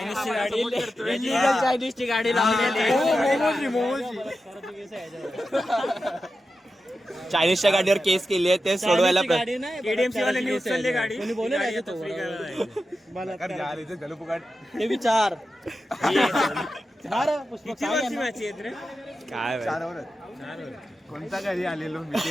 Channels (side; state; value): both; normal; correlation 0.91